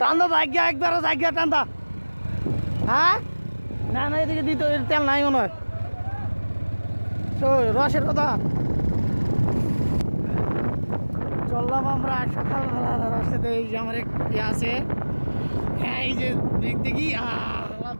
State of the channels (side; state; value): both; inverted; correlation -1.00